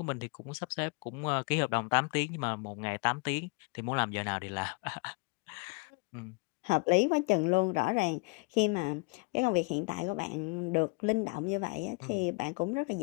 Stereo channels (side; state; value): right; quieter; 30.7 dB